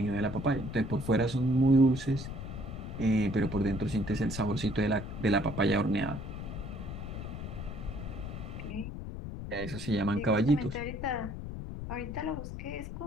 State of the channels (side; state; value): left; noise; rumble, 7 dB below the sound